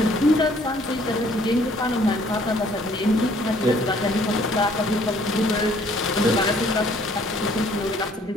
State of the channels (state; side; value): normal; both; correlation 0.60